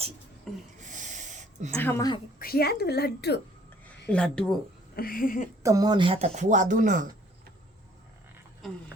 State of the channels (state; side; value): normal; both; correlation 0.59